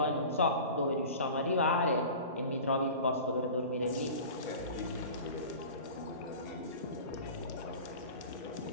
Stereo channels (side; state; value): both; inverted; correlation -0.37